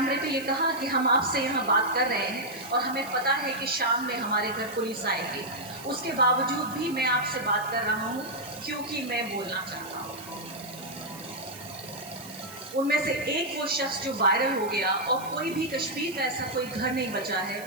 पे ये कहा कि हम आपसे यहाँ बात कर रहे हैं और हमें पता है कि शाम में हमारे घर पुलिस आएगी, उसके बावजूद भी मैं आपसे बात कर रहा हूँ क्योंकि मैं बोलना चाहता हूँ। उनमें से एक वो शख्स जो वायरल हो गया, और कोई भी कश्मीर का ऐसा कोई घर नहीं बचा है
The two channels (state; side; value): noise; right; hiss, 16 dB below the sound